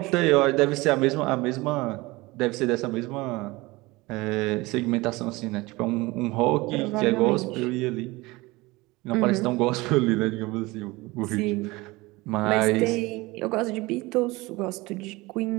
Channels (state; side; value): quieter; left; 21.9 dB